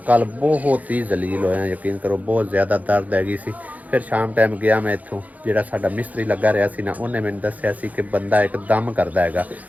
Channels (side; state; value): left; late; 0.076 ms